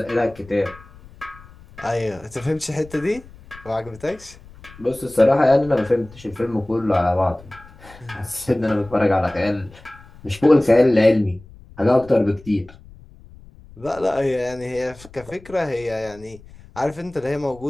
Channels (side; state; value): left; noise; rumble, 21 dB below the sound